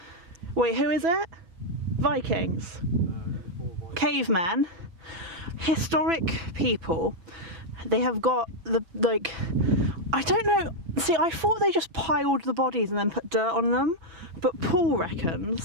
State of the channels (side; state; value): left; late; 6.0 ms